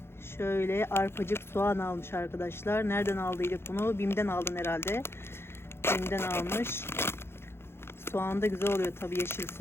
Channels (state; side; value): late; right; 0.12 ms